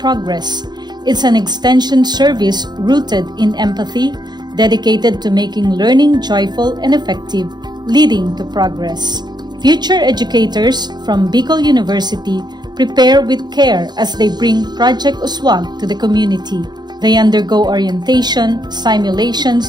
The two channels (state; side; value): late; left; 0.21 ms